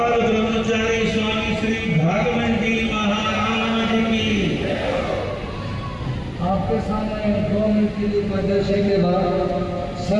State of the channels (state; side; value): identical; both; correlation 1.00